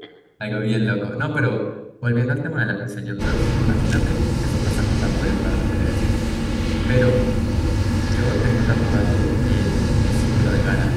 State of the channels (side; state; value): both; identical; correlation 1.00